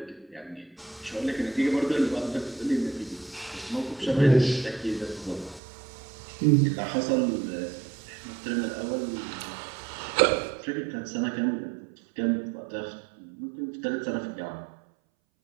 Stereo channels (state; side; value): drops out; left; at 5.6 s